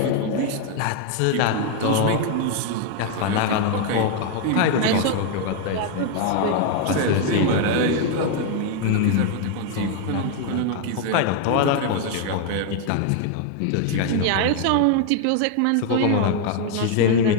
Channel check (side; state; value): both; different; correlation 0.00